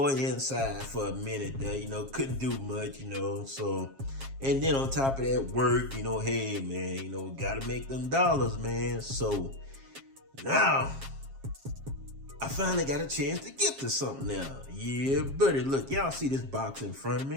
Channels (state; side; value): late; left; 7.4 ms